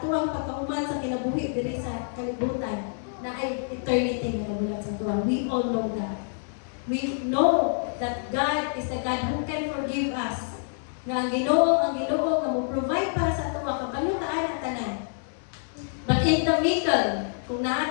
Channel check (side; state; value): right; silent; digital silence